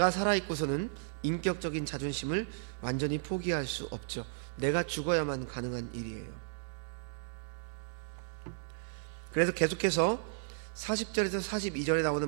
살아있고서는 인격적인 자존심을 완전히 포기할 수 없죠. 내가 죽어야만 가능한 일이에요. 그래서 계속해서 40절에서 42절에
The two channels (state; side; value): silent; left; digital silence